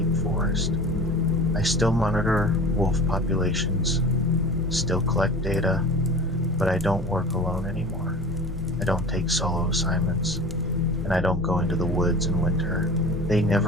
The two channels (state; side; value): normal; both; correlation 0.37